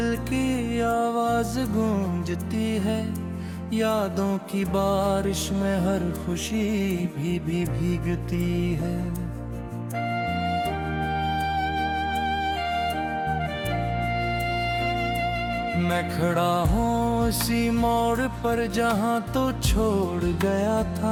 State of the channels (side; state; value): both; identical; correlation 1.00